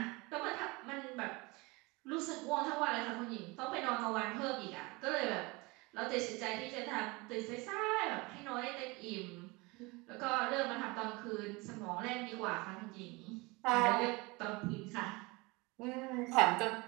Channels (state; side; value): quieter; left; 25.1 dB